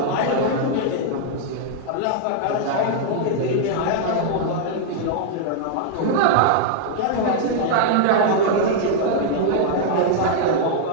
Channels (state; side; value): different; both; correlation -0.01